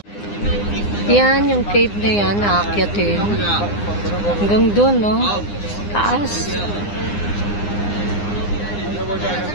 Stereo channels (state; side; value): late; right; 9.8 ms